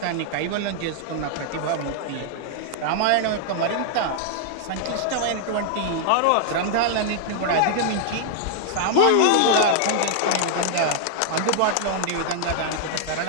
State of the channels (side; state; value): both; different; correlation -0.01